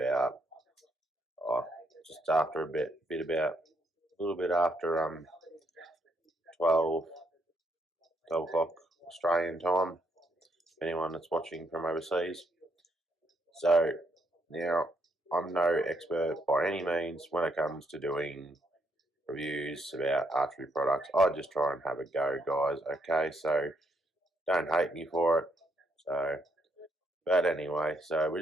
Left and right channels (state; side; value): normal; both; correlation 0.74